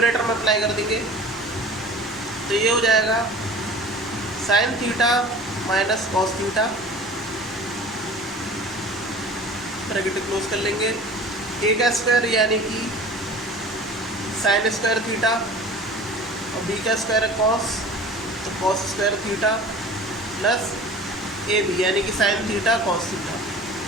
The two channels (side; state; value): both; normal; correlation 0.41